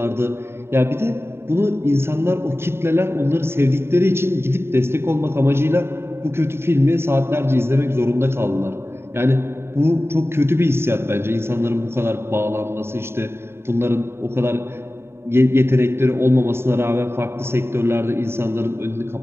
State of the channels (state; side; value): late; left; 0.12 ms